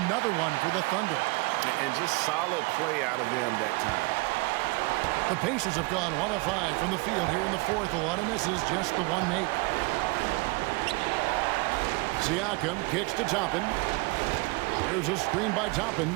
one for the Thunder. And just solid play out of them that time. The Pacers have gone 1 of 5 from the field here in the fourth. A lot of misses, just the one make. Siakam kicks to Toppin. There's a screen by Toppin.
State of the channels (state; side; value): quieter; left; 25.8 dB